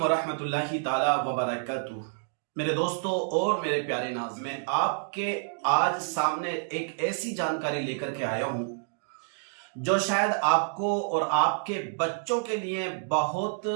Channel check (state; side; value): silent; left; digital silence